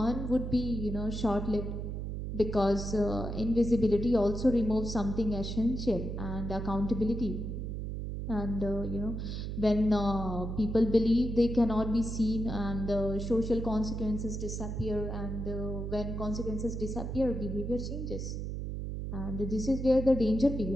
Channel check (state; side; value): noise; right; hum, 4 dB below the sound